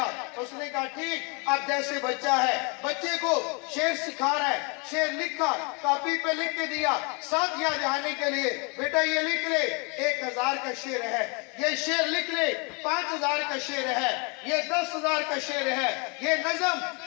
उसने कहा ठीक। अब जैसे बच्चा है, बच्चे को शेर सिखा रहा है, शेर लिखा, कॉपी पे लिख के दिया, साथ याद आने के लिए, बेटा ये लिख ले 1000 का शेर है, ये शेर लिख ले 5000 का शेर है, ये 10,000 का शेर है, ये नज़म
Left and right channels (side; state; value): right; quieter; 32.5 dB